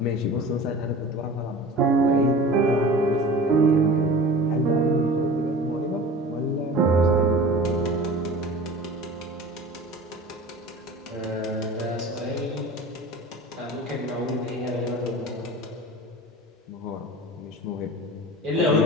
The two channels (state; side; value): normal; both; correlation 0.38